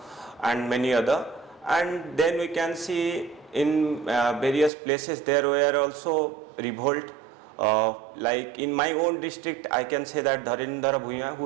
and many other. And then we can see in various places there were also revolt. Like in my own district, I can say that Dharindra Bhuya,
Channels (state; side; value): drops out; left; at 4.7 s